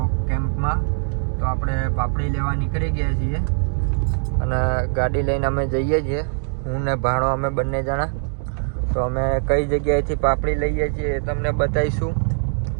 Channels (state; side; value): silent; left; digital silence